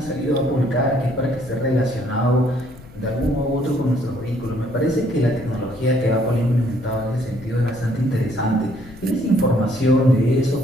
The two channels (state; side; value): noise; left; rumble, 19 dB below the sound